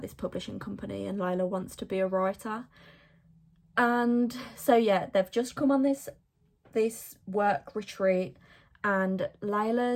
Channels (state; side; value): identical; both; correlation 1.00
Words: this publishing company and Layla wants to be a writer. And so yeah, they've just come on this work retreat, and